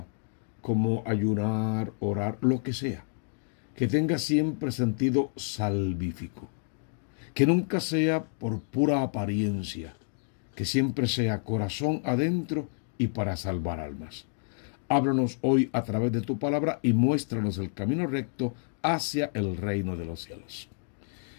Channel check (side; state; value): right; silent; 58 dB below the other